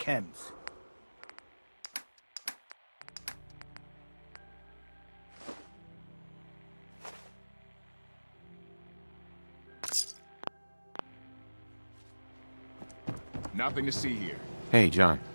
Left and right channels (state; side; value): inverted; both; correlation -1.00